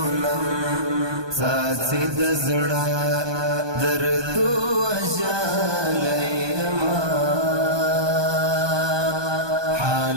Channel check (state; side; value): late; left; 1.2 ms